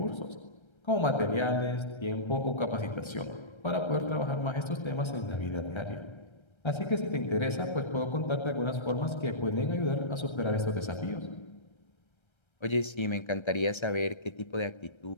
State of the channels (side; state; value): right; late; 1.3 ms